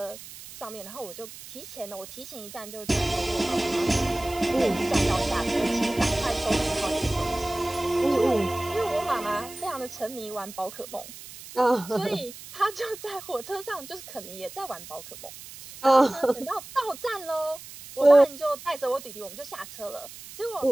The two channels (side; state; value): right; noise; hiss, 15 dB below the sound